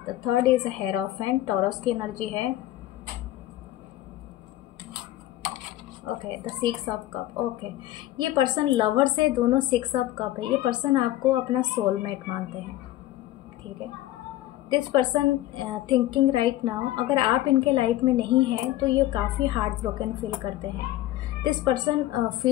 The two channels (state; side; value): quieter; right; 14.9 dB